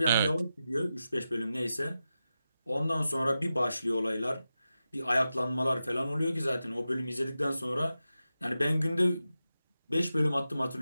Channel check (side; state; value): both; inverted; correlation -0.91